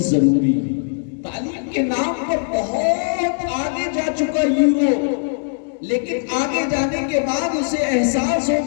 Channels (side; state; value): right; silent; digital silence